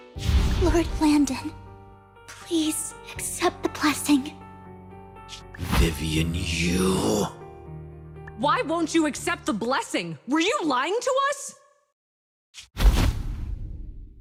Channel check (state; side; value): identical; both; correlation 1.00